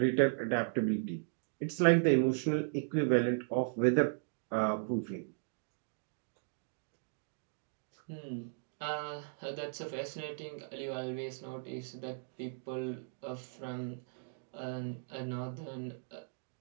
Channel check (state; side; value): silent; left; digital silence